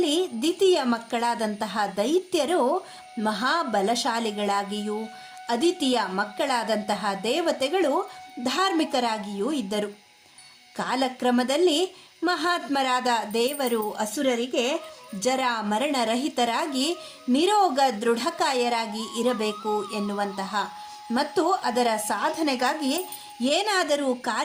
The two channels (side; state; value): both; identical; correlation 1.00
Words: ದ್ವಿತೀಯ ಮಕ್ಕಳಾದಂತಹ ದೈತ್ಯರು ಮಹಾಬಲಶಾಲಿಗಳಾಗಿಯೂ ಅದಿತಿಯ ಮಕ್ಕಳಾದಂತಹ ದೇವತೆಗಳು ಧಾರ್ಮಿಕರಾಗಿಯೂ ಇದ್ದರು. ಕಾಲಕ್ರಮದಲ್ಲಿ ಮಹಾತ್ಮರಾದ ದೇವರು ಅಸುರರಿಗೆ ಜರ ಮರಣರಹಿತರಾಗಿ ನಿರೋಗ ದೃಢಕಾಯರಾಗಿ ಇರಬೇಕು ಎನ್ನುವಂತಹ ಮತ್ತು ಅದರ ಸಾಧನೆಗಾಗಿ ಏನಾದರೂ